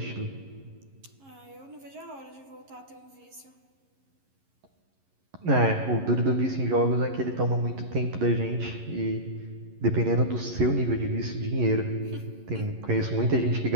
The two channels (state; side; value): late; left; 11 ms